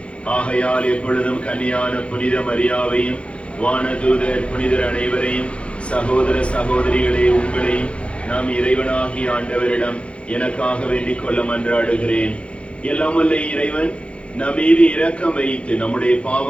ஆகையால் எப்பொழுதும் கன்னியான புனித மரியாவையும் வானதூதர் புனிதர் அனைவரையும் சகோதர சகோதரிகளே உங்களையும் நாம் இறைவனாகி ஆண்டவரிடம் எனக்காக வேண்டிக் கொள்ள மன்றாடுகிறேன். எல்லாமல்ல இறைவன் நம் மீது இரக்கம் வைத்து நம்முடைய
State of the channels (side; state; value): right; late; 0.060 ms